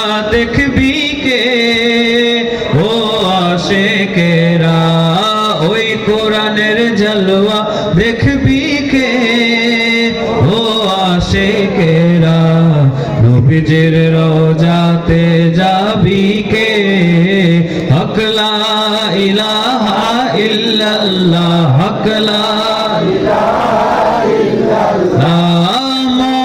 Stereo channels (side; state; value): both; identical; correlation 1.00